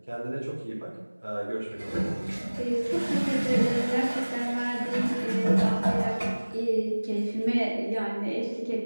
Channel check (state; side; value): inverted; both; correlation -1.00